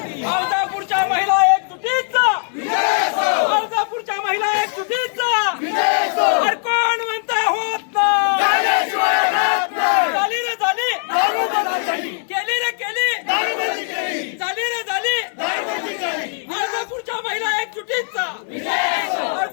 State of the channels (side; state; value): right; silent; digital silence